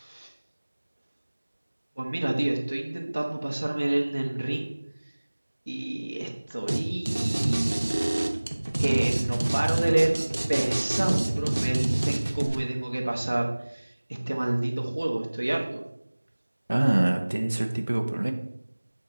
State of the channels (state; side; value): inverted; both; correlation -1.00